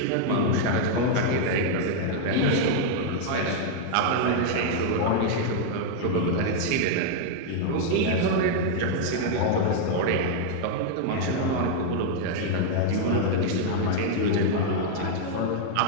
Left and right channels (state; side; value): different; both; correlation -0.01